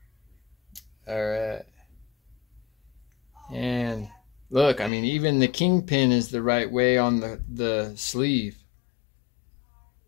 All right. And look, I mean, even the kingpin is the right way on the sleeve.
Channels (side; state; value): right; drops out; at 4.9 s